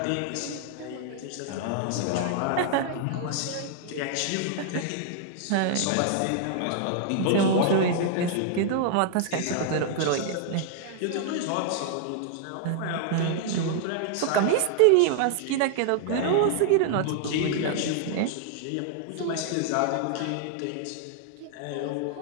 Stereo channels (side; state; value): both; different; correlation -0.01